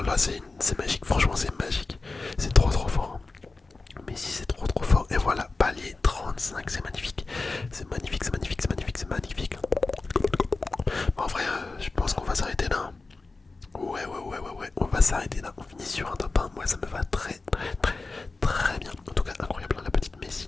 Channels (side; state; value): right; quieter; 3.7 dB